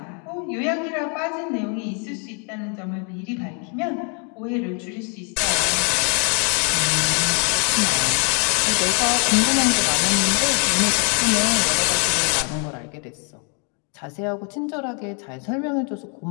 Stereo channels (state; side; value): quieter; right; 38.6 dB